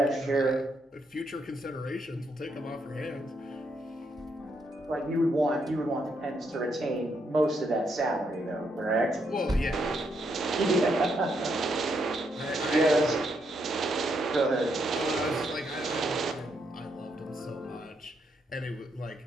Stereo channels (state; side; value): normal; both; correlation 0.77